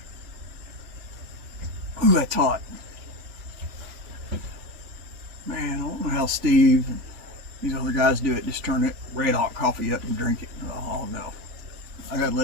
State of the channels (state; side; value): late; left; 3.5 ms